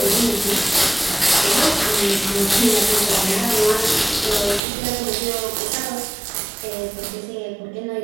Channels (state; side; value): drops out; left; at 4.6 s